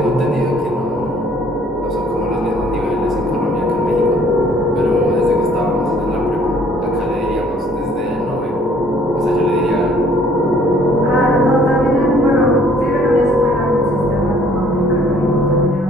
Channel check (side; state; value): both; normal; correlation 0.59